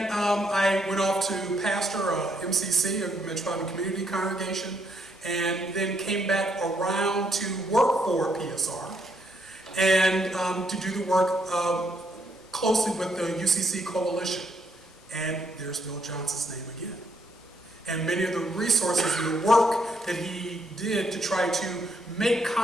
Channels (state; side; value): normal; both; correlation 0.74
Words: I went off to pastor MCC, a Metropolitan Community Congregation, and then came back around to work for PSR and to do the work closely with the UCC Coalition. And there's Bill Johnson's name again. And many of the resources and the work that he did to try to make